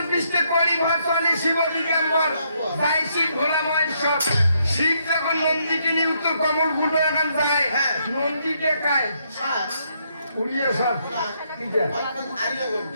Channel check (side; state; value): both; inverted; correlation -0.74